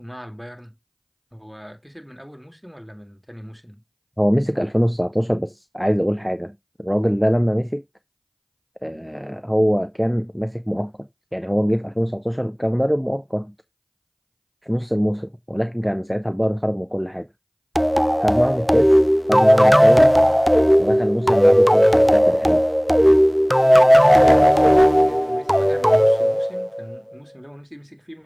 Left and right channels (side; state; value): both; identical; correlation 1.00